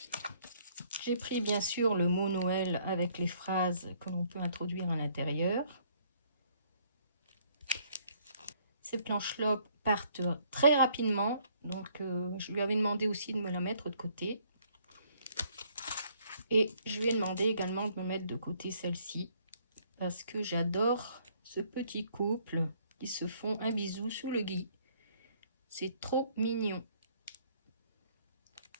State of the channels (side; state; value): both; inverted; correlation -0.64